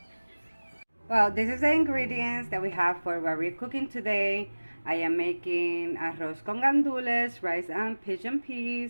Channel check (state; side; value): inverted; both; correlation -1.00